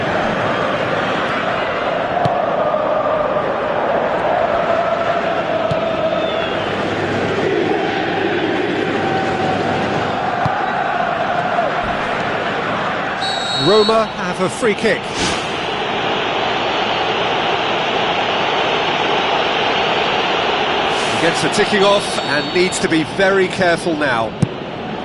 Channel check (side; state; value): both; identical; correlation 1.00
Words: Roma have a free kick. Gets the ticking off and needs to be very careful now.